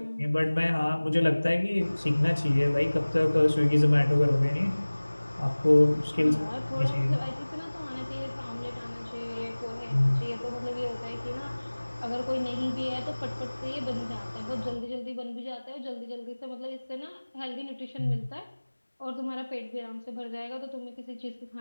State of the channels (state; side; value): inverted; both; correlation -1.00